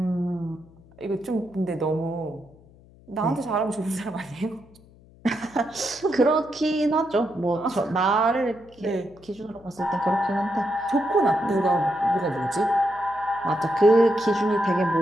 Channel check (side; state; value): left; noise; hum, 26 dB below the sound